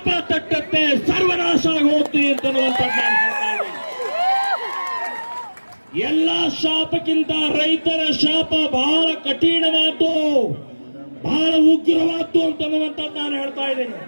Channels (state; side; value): inverted; both; correlation -1.00